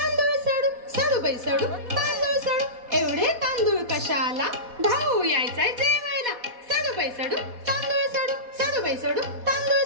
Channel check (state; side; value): late; left; 4.2 ms